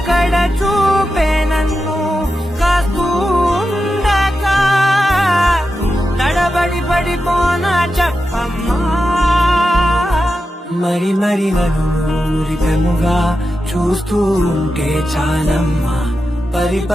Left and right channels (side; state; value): both; normal; correlation 0.90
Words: కడ చూపే నన్ను కాస్తూ ఉండక తడబడి పడిపోనా చెప్పమ్మా మరి మరి నన్ను మురిపెముగా చూస్తూ ఉంటే చాలమ్మా పరి